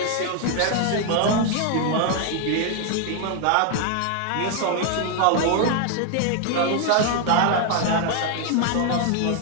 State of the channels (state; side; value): different; both; correlation 0.00